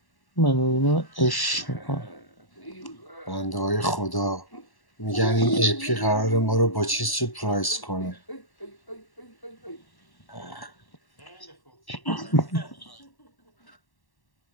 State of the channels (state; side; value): late; right; 1.1 ms